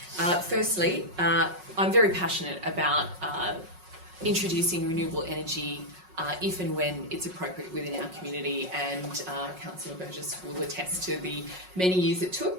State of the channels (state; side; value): late; left; 5.4 ms